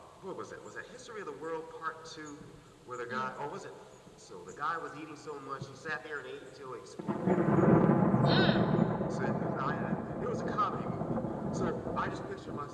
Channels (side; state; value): both; identical; correlation 1.00